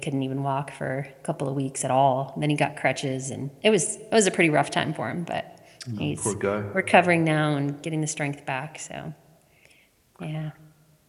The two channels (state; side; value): identical; both; correlation 1.00